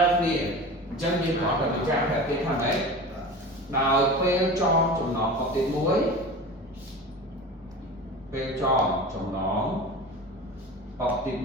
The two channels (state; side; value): normal; both; correlation 0.33